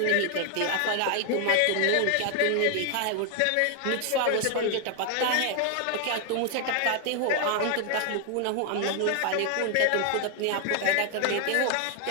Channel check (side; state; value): both; different; correlation 0.00